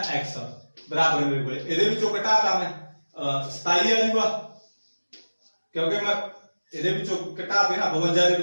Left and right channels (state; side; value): inverted; both; correlation -1.00